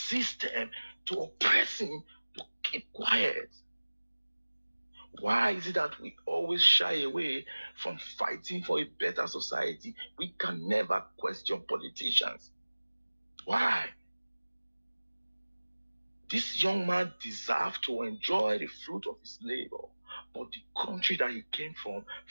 to oppress him to keep quiet. Why is it that we always shy away from fighting for a better society? We can never question politicians. Why? This young man deserved to enjoy the fruit of his labor, but the country that he came from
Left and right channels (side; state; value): both; inverted; correlation -1.00